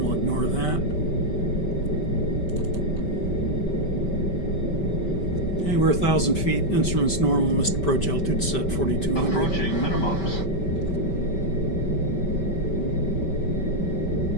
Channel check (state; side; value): late; right; 5.2 ms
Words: We'll ignore that. Okay, we're 1,000 feet. Instruments normal. Missed approach altitude set 4200. Approaching minimums.